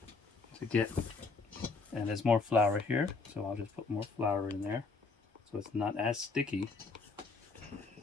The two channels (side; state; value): right; quieter; 4.2 dB